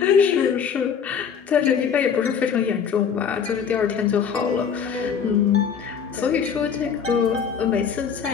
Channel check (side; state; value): right; quieter; 7.1 dB